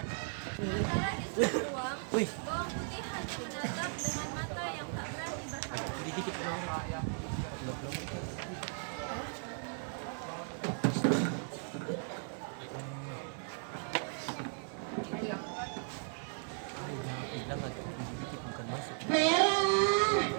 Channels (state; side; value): silent; left; 53 dB below the other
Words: Sementara di sudut ruang, bawang putih hanya menatap dengan mata yang tak berani berharap. Merah,